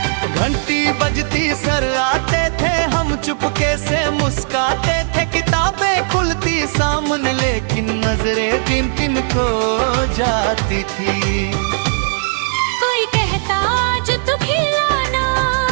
घंटी बजती सर आते थे, हम चुपके से मुस्काते थे, किताबें खुलती सामने लेकिन नजरें किन किन को जाती थी। कोई कहता आज तू खिलाना,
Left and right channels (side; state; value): left; silent; 62 dB below the other